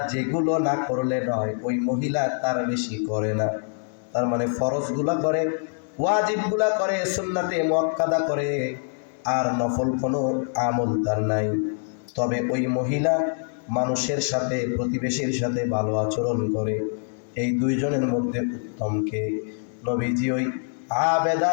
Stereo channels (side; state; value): right; silent; 62 dB below the other